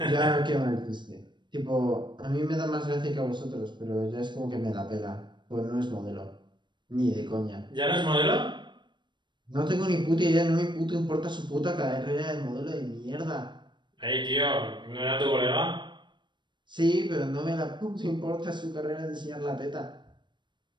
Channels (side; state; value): left; late; 0.22 ms